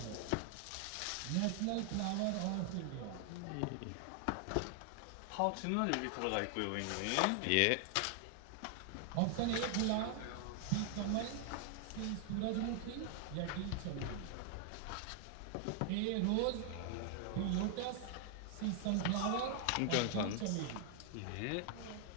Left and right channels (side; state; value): both; different; correlation 0.00